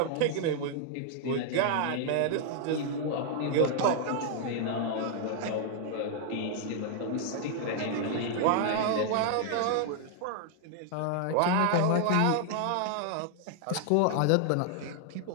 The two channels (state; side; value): different; both; correlation 0.00